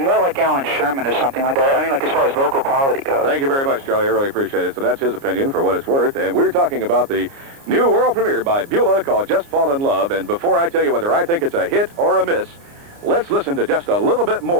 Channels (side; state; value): left; late; 29 ms